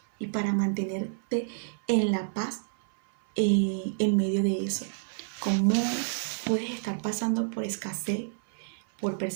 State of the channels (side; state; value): left; silent; 59 dB below the other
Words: y para mantenerte en la paz en medio de eso. ¿Cómo puedes estar pasando por escasez, por